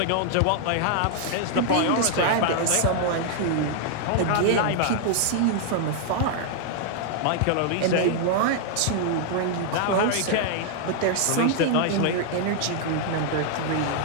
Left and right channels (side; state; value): both; different; correlation 0.00